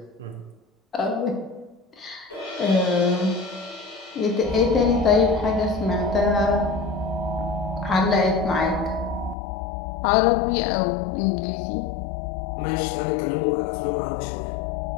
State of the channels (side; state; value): right; drops out; at 9.3 s